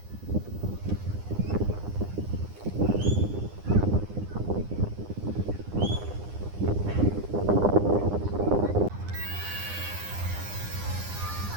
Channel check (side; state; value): left; late; 9.9 ms